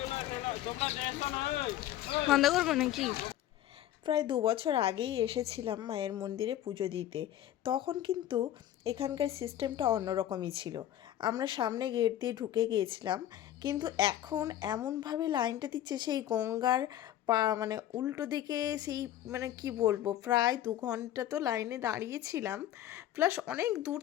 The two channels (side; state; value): right; quieter; 12.4 dB